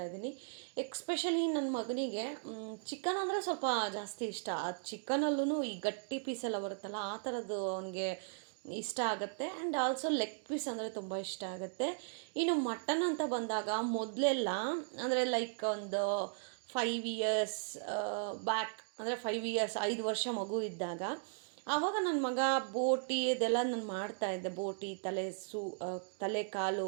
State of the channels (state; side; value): silent; left; digital silence